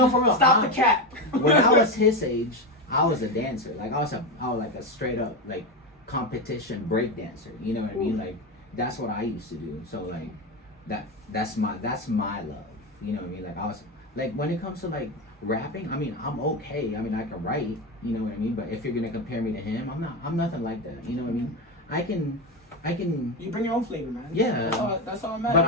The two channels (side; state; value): both; normal; correlation 0.15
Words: for real. Stop the cap. When I was his age, I was a dancer. Like I was like a straight up like competition break dancer. You know what I mean? Like that's what I used to do. So like that's my love. You know what I mean? Like I was like when it comes to like rapping, I mean I'm okay. I mean I can write. You know what I mean? But if you're gonna compare me to him, I'm nothing like that. You know what I mean? I can. You bring your own flavor, man. Yeah. That's all that matters. But